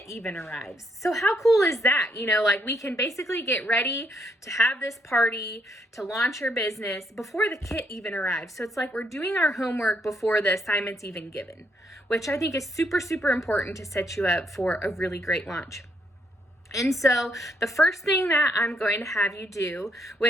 even arrives. So how cool is that? Like we can basically get ready to have this party, to launch your business before the kit even arrives. So it's like we're doing our homework before the assignment's even given, which I think is super, super important to set you up for a really great launch. And so the first thing that I'm going to have you do,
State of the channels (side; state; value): both; normal; correlation 0.74